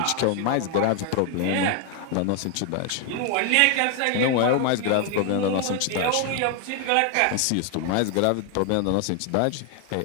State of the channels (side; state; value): both; different; correlation 0.01